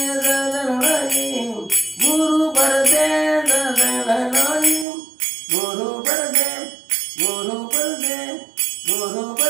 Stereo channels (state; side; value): drops out; left; at 4.9 s